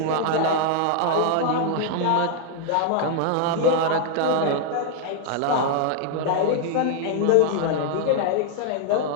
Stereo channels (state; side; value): different; both; correlation 0.00